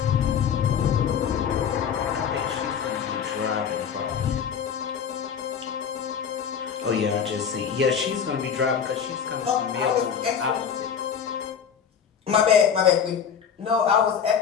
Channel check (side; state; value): right; quieter; 7.4 dB